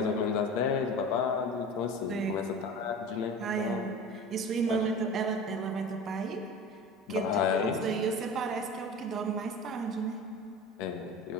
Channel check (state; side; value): normal; both; correlation 0.34